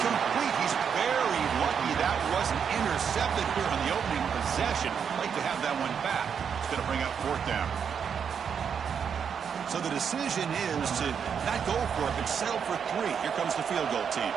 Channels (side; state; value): left; quieter; 7.2 dB